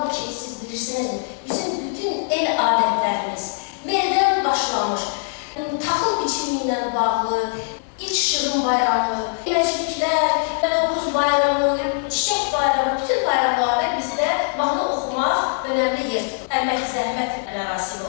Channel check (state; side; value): silent; right; 58 dB below the other